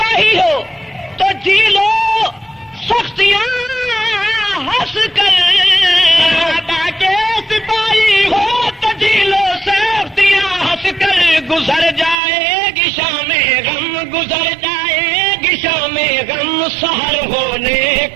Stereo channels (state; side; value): drops out; left; at 12.2 s